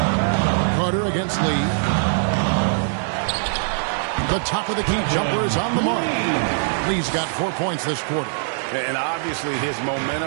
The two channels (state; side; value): silent; left; 61 dB below the other